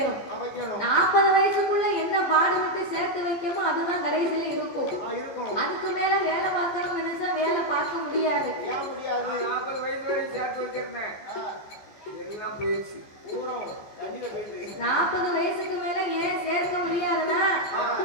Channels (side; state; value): right; late; 14 ms